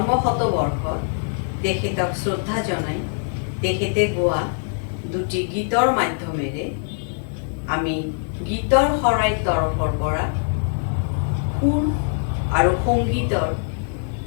শতবৰ্ষত তেখেতক শ্ৰদ্ধা জনাই তেখেতে গোৱা দুটি গীতৰ মাধ্যমেৰে আমি গীতৰ শৰাই তৰফৰ পৰা সুৰ আৰু সংগীতৰ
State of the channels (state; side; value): silent; right; digital silence